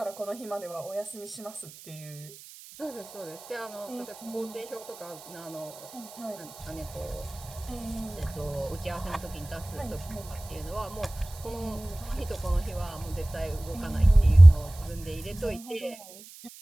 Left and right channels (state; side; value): noise; right; hiss, 18 dB below the sound